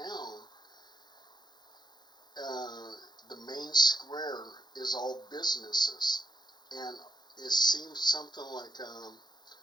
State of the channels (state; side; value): late; right; 0.21 ms